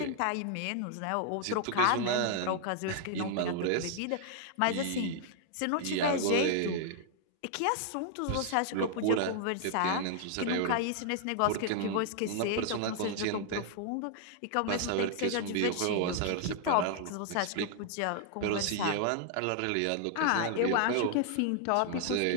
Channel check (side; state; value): both; different; correlation 0.00